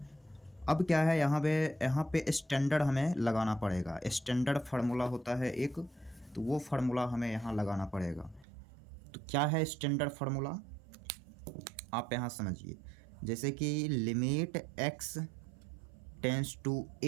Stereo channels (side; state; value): left; drops out; at 8.5 s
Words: अब क्या है, यहाँ पे स्टैंडर्ड हमें लगाना पड़ेगा। स्टैंडर्ड फार्मूला होता है एक, तो वो फार्मूला हमें यहाँ लगाना पड़ेगा। तो क्या है स्टैंडर्ड फार्मूला, आप यहाँ समझिए। जैसे कि limit x tends to